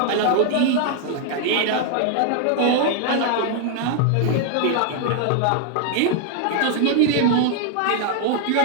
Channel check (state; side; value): different; both; correlation 0.00